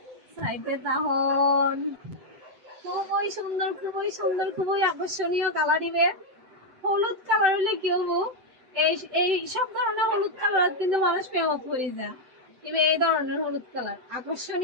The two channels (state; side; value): late; left; 7.8 ms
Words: সাইডে। তখন খুবই সুন্দর, খুবই সুন্দর, খুবই আকর্ষণীয় কালার দিবে। হলুদ কালার হলে কি হবো, এই সব ধরনের হলুদ কালার কিন্তু মানুষ প্রেমত করে যায়, এবার এই ধরনের হলুদ কালার